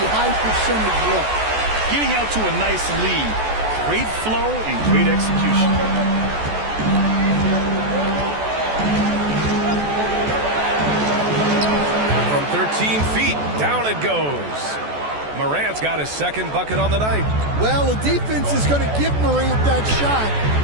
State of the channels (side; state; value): left; late; 14 ms